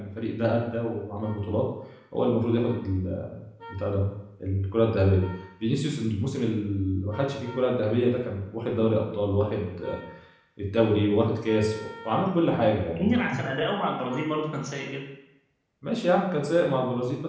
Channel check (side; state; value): both; identical; correlation 1.00